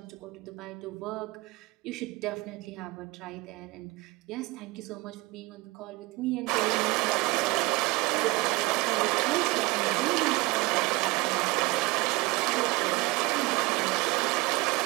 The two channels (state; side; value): quieter; left; 23.2 dB